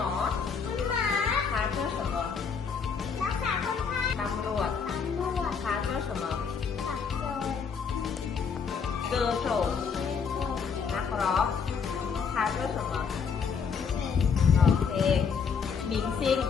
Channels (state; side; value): quieter; right; 6.1 dB